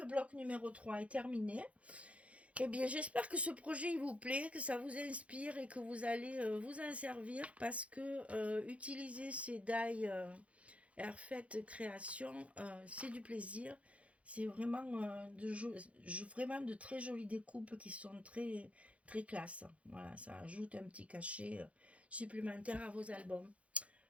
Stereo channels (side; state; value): left; late; 0.064 ms